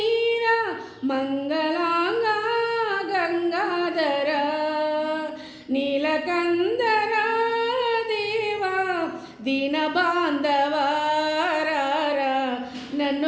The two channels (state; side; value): identical; both; correlation 1.00